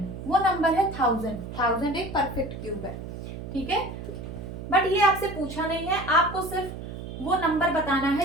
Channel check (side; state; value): right; noise; hum, 9 dB below the sound